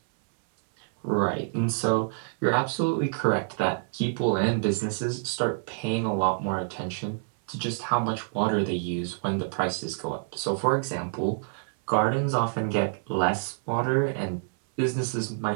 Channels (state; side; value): silent; left; 60 dB below the other